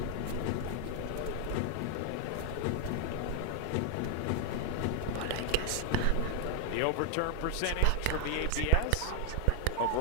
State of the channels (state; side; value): different; both; correlation 0.01